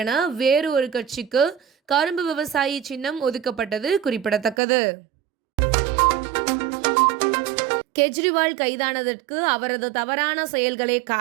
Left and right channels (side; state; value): left; drops out; at 4.5 s